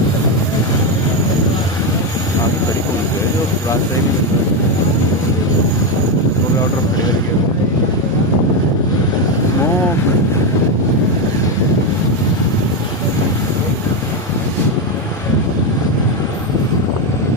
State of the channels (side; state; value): both; normal; correlation 0.09